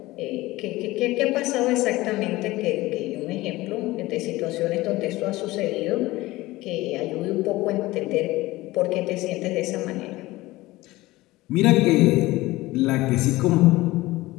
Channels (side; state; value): right; quieter; 18.9 dB